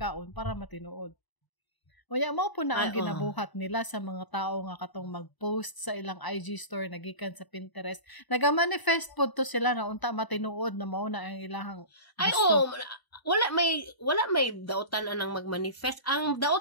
para matinuod. Unya mao po na ang ginabuhat nila sa mga tao nga katong mag-post sa ilang IG story nagikan sa Pinterest. Naga-manifest po to sila na unta matinuod na mao na ang ilahang gusto. Wala may dautan anang magmanifest. Ang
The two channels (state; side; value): late; right; 1.0 ms